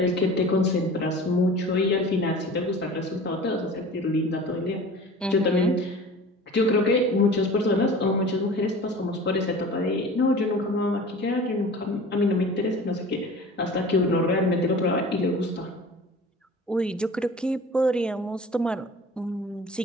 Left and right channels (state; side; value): normal; both; correlation 0.40